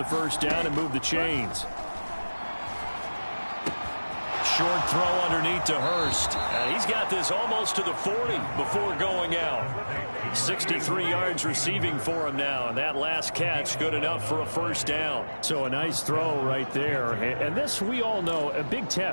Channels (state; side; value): inverted; both; correlation -1.00